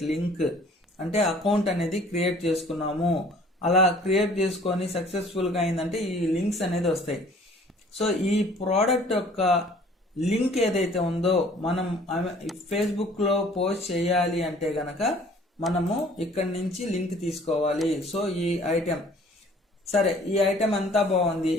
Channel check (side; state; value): both; normal; correlation 0.53